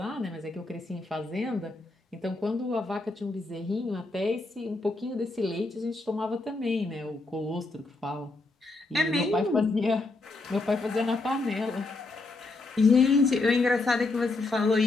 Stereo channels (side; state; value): right; quieter; 3.3 dB